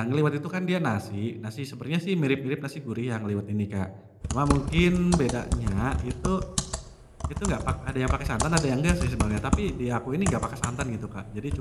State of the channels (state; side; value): identical; both; correlation 1.00